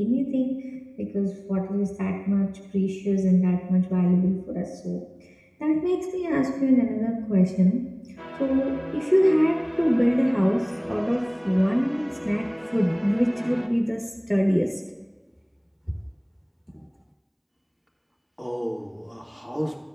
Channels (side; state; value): both; identical; correlation 1.00